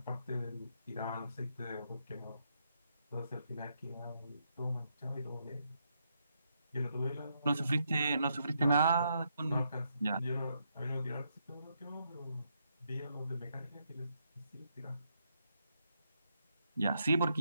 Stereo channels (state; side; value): inverted; both; correlation -0.78